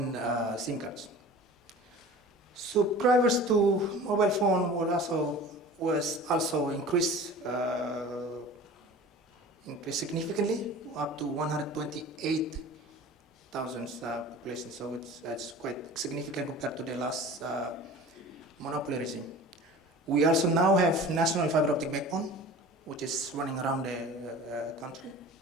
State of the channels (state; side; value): normal; both; correlation 0.40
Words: SIM cards. Subscribers to mobile phone was also increased significantly, up to 128,000 population. So it's quite significant compared to the last monopoly regime. We also now have national fiber optic backbone, which is running around the country.